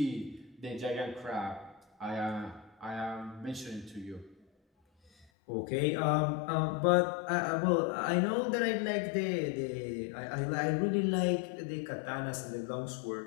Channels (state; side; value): drops out; right; at 5.2 s